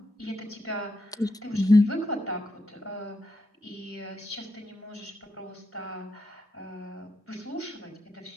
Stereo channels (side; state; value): both; normal; correlation 0.83